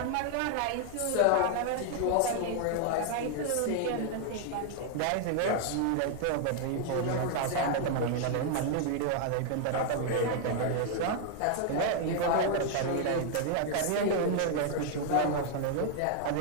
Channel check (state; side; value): different; both; correlation 0.00